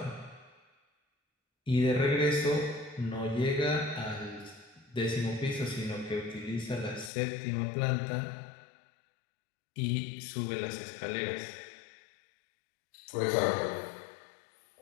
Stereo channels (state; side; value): drops out; right; at 7.1 s